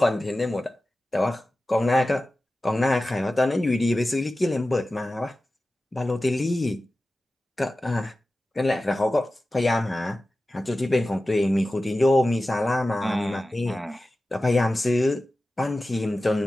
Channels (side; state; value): both; normal; correlation 0.95